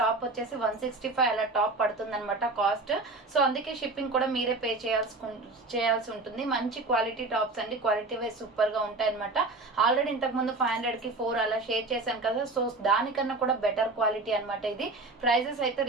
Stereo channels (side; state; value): left; quieter; 3.2 dB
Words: వచ్చేసి 165 అలా టాప్ పడుతుంది అనమాట కాస్ట్. సో అందుకే షిప్పింగ్ కూడా మీరే పే చేయాల్సి ఉంటుంది. మంచి క్వాలిటీ టాప్స్ అండి, క్వాలిటీ వైజ్ సూపర్ గా ఉంటాయి అనమాట. ఆల్రెడీ ఇంతకు ముందు 500 కి 4 అలా షేర్ చేశాను కదా, సో దానికన్నా కూడా బెటర్ క్వాలిటీ అనమాట. ఇది ప్రైజెస్ అయితే